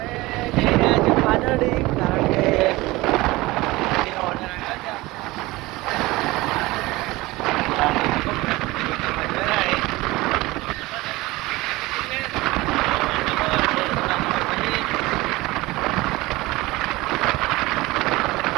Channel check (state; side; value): quieter; left; 20.4 dB